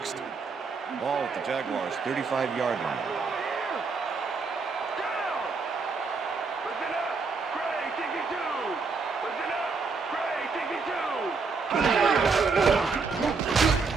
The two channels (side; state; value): left; quieter; 4.7 dB